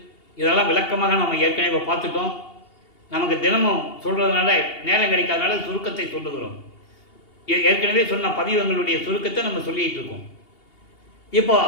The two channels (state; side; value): late; right; 2.8 ms